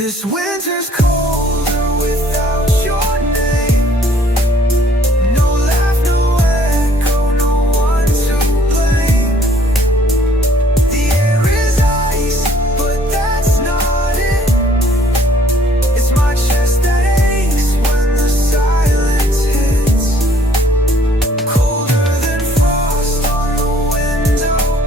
This winter's colder without your name. No laugh, no echo, no one to blame. The air is ice, but that's not it. It's my chest that aches when the silence hits. Colder than frost on the window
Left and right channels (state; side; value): normal; both; correlation 0.61